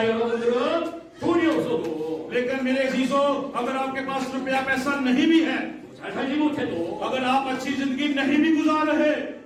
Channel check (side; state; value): both; identical; correlation 1.00